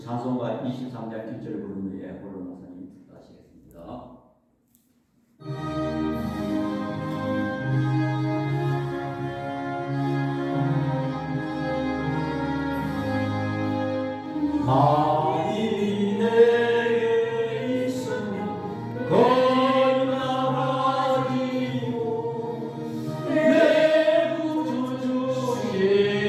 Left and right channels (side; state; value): both; identical; correlation 1.00